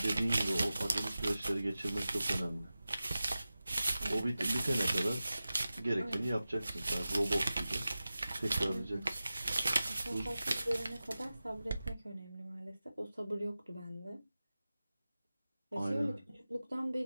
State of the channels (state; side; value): inverted; both; correlation -0.95